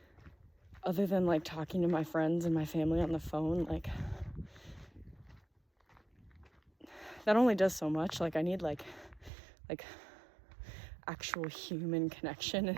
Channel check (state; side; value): drops out; left; at 9.3 s